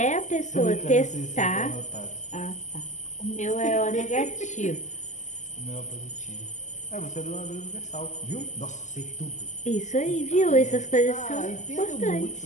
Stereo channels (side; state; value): right; late; 0.35 ms